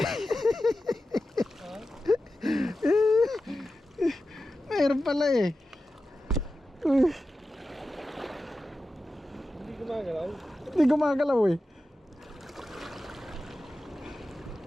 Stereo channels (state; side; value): normal; both; correlation 0.93